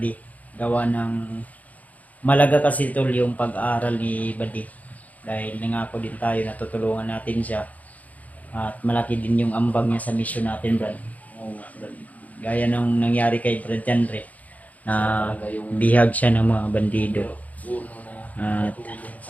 Gawa ng malaga kasi tol yung pag-aaral ni Buddy dahil nangako din tayo na tutulungan natin siya at malaki din yung ambag niya sa mission natin, Brad. Gaya nung nangyari kay Brad Janre na bihag siya ng mga bandido. At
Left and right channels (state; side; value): late; right; 0.075 ms